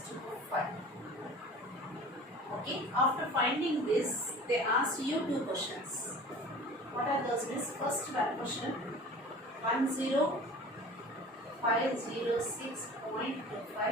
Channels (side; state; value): both; normal; correlation 0.41